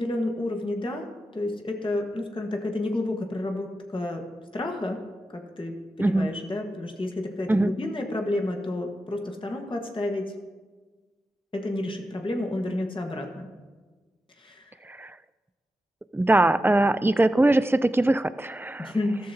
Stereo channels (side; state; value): both; normal; correlation 0.90